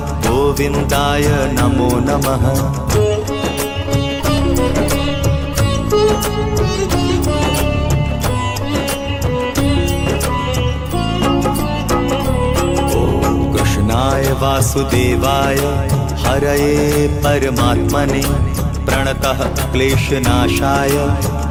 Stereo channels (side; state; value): both; identical; correlation 1.00